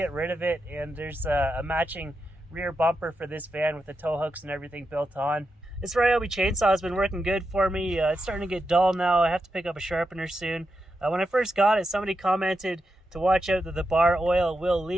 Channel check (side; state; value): both; normal; correlation 0.87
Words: rid of it, and there's a matching rear bumper for this van with the tow hooks and everything built on. This Ryobi chainsaw has been working good for me. It's starting to get dull now. I have to pick up a sharpener soon. When I first got it, somebody commented to watch out that the bar oil will